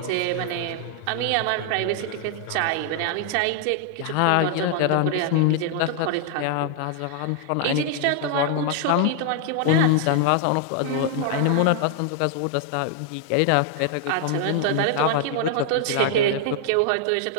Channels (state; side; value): different; both; correlation 0.00